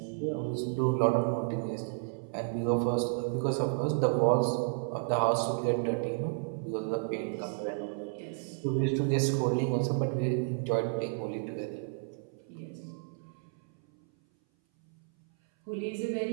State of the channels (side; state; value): left; silent; 57 dB below the other